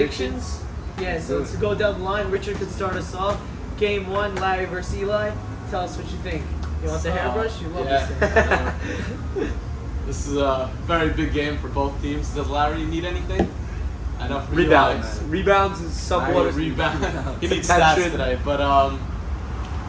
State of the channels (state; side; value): identical; both; correlation 1.00